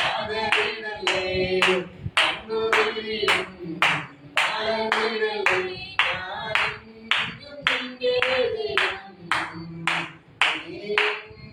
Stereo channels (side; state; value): both; identical; correlation 1.00